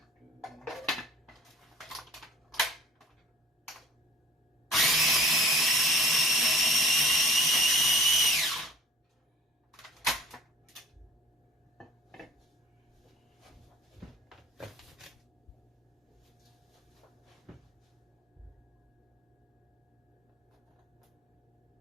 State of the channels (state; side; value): normal; both; correlation 0.49